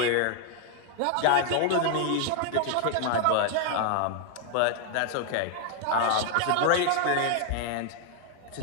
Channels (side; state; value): both; different; correlation 0.00